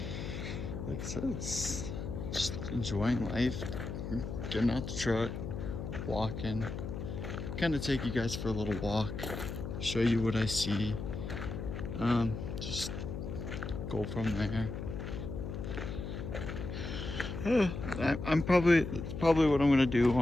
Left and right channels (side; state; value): left; noise; hum, 6 dB below the sound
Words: it's just enjoying life, getting out the truck, walking, kind of take you guys for a little walk, show you what I see, just go from there. I'm probably what I'm gonna do